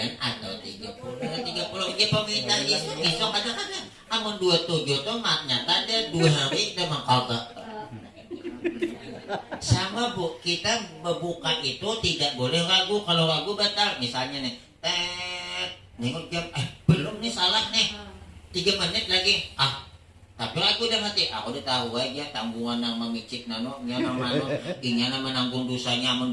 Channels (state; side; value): identical; both; correlation 1.00